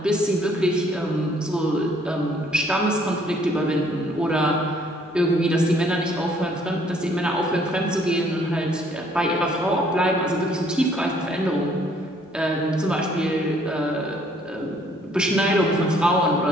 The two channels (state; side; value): normal; both; correlation 0.62